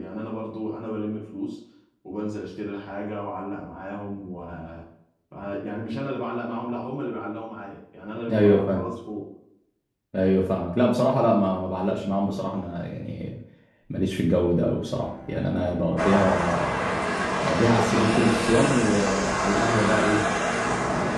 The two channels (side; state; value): both; identical; correlation 1.00